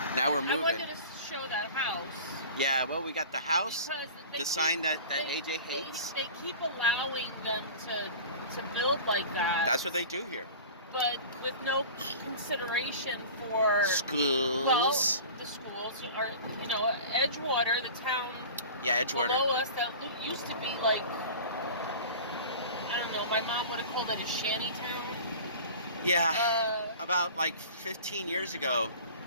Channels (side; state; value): both; inverted; correlation -0.38